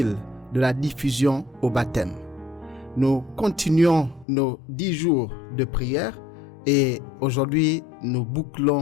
de la diffusion au baptême. Nous continuons nos 10 jours de prière et aujourd'hui nous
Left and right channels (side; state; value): right; drops out; at 4.2 s